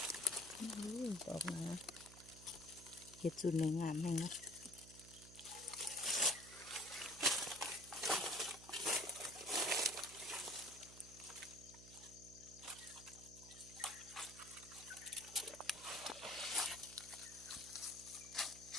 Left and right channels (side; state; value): right; noise; hum, 16 dB below the sound